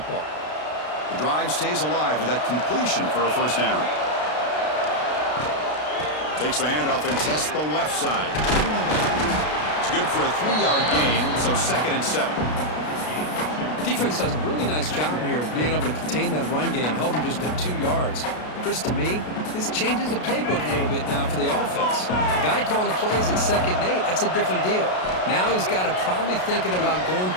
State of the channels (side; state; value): right; late; 33 ms